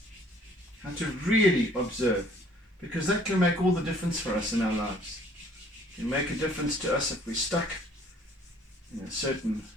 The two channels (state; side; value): normal; both; correlation 0.57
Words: how to really observe, because that can make all the difference for us in our lives. It can make a difference to us if we're stuck in a certain